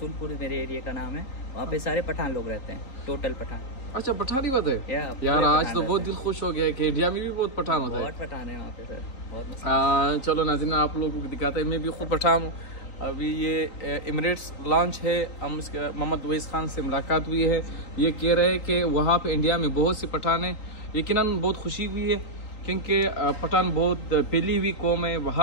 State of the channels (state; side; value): late; right; 3.8 ms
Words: मेरे एरिया का नाम है, वहाँ पे सारे पठान लोग रहते हैं, टोटल पठान। अच्छा, पठानी बात है यार। आज तो बहुत दिल खुश हो गया है कि इंडिया में भी बहुत पठान होता है। बहुत पठान है वहाँ पे सर, बहुत। चलो नाज़रीन, आप लोगों को दिखाते हैं। मैं भी खुद पठान हूँ। अभी ये एमिरेट्स लॉन्च है, हम इसके मोहम्मद अवैस खान से मुलाकात हुई है। ये कह रहे हैं कि वहाँ पे इंडिया में बहुत से पठान हैं। यकीनन बहुत खुशी हुई है क्योंकि पठान बहुत फैली हुई कौम है,